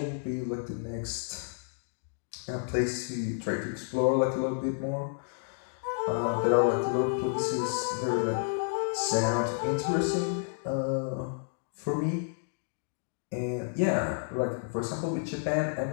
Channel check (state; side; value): silent; right; digital silence